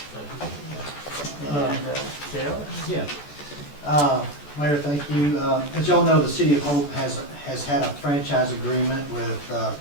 And Dale? Yeah. Mayor, thank you. As y'all know, the City of Hope has had a franchise agreement with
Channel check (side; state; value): right; late; 14 ms